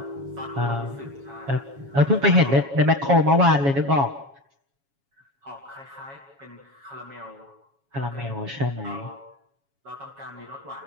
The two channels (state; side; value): late; left; 7.2 ms